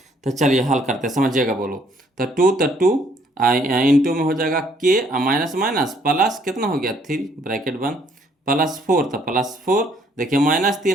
तो चलिए हल करते हैं, समझिएगा बोलो, तो 2 इंटू में हो जाएगा k माइनस माइनस प्लस कितना हो गया 3 ब्रैकेट बंद, प्लस 4, तो प्लस 4 देखिए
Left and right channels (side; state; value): both; normal; correlation 0.65